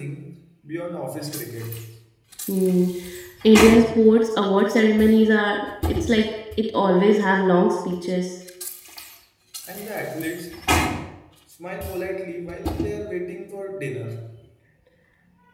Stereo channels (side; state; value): both; identical; correlation 1.00